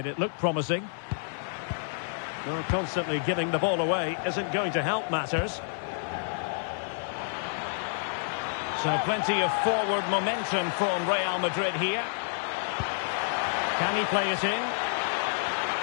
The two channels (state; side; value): silent; right; 59 dB below the other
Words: It looked promising. Well, constantly giving the ball away isn't going to help matters. So plenty of forward momentum from Real Madrid here. Can he play it in?